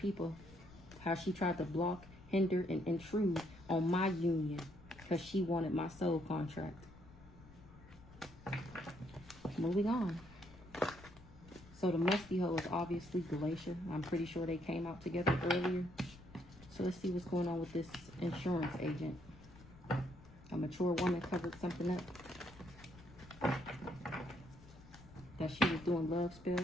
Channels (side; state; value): left; noise; rumble, 20 dB below the sound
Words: How she tried to block, hinder, and intrude on my union because she wanted my soul contract. Moving on. So the musty hoe is obviously Glacier. I'm pretty sure they came out together earlier. So let's see what's going on with this insurance agent. A mature woman covered something up. That she was doing love spells